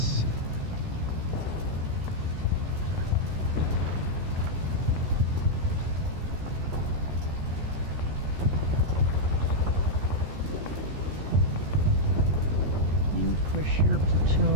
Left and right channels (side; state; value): left; late; 14 ms